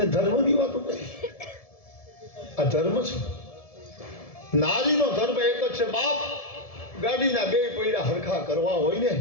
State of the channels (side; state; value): right; late; 1.7 ms